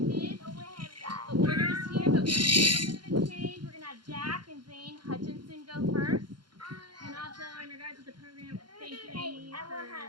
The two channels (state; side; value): late; left; 0.72 ms